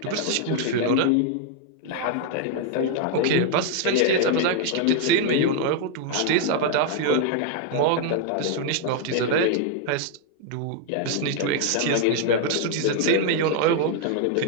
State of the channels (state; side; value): different; both; correlation 0.00